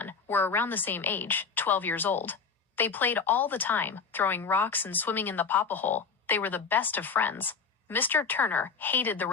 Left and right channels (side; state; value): right; quieter; 5.4 dB